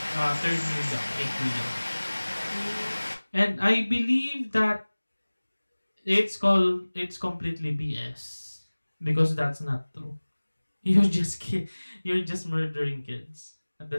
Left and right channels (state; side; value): inverted; both; correlation -1.00